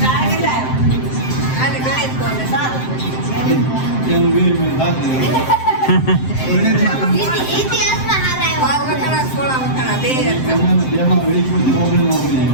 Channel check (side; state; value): right; late; 7.7 ms